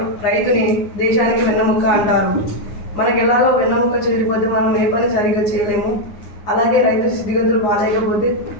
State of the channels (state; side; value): late; right; 9.6 ms